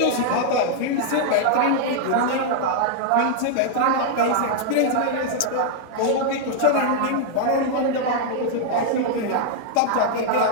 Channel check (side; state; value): both; different; correlation -0.01